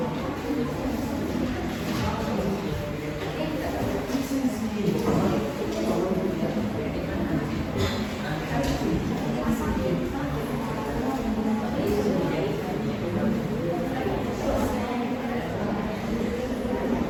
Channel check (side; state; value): both; identical; correlation 1.00